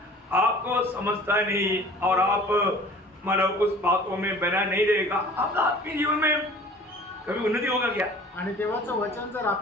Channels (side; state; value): both; normal; correlation 0.46